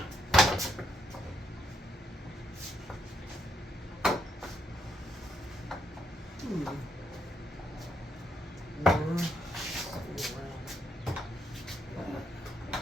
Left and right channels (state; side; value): normal; both; correlation 0.77